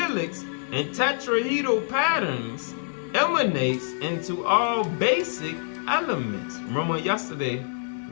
and tetrahedral patterns, emanates into all basic elements. Remember yesterday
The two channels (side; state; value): right; silent; 61 dB below the other